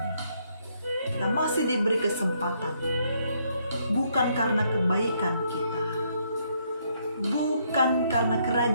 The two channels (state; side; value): inverted; both; correlation -0.72